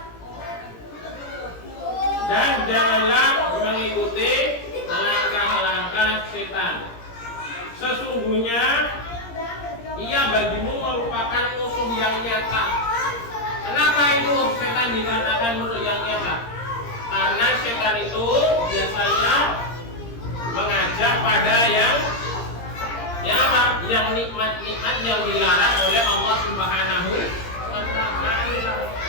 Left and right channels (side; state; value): right; late; 17 ms